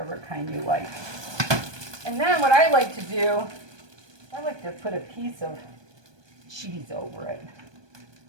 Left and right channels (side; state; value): left; late; 1.2 ms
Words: kind you like. And then what I like to do, I like to put a piece of cheese over it.